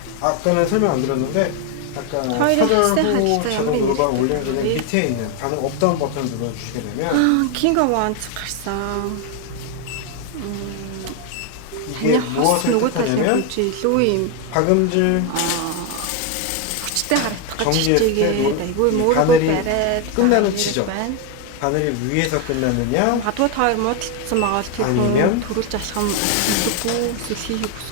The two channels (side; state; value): both; different; correlation 0.01